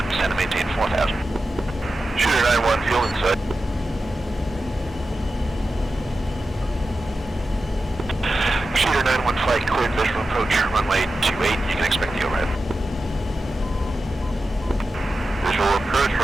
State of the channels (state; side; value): normal; both; correlation 0.92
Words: send and maintain 4,000. Shooter 9-1, fuel inside. Shooter 9-1, flight cleared, visual approach, runway 28, you can expect the overhead. Visual approach,